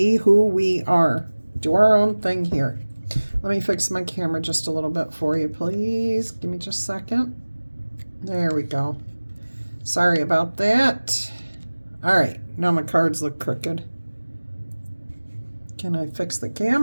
who we are. Do our own thing here. Let me fix my camera just a little bit for you, please. Give me just a second. There we go. Sorry about that. All right, now my cards look crooked. Can I fix the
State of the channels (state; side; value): inverted; both; correlation -1.00